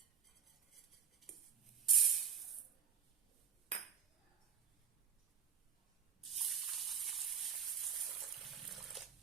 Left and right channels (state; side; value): quieter; left; 7.8 dB